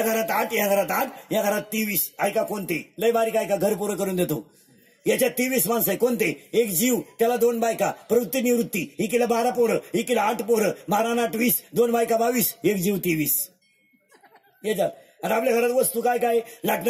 घरात 8 या घरात 8 या घरात 23. ऐका कोणते लय बारीक ऐका घर पुरं करून देतो. याच्यात 23 माणसं आहे. कोणते. एक जीव त्याला 2 बायका प्रवृत्ती निवृत्ती. इकीला 12 पोरं इकीला 8 पोरं 12 8 20 2 बायका 22 एक जीव 23. याच्यात आणि आपल्या घरात वस्तू काय काय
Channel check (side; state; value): both; identical; correlation 1.00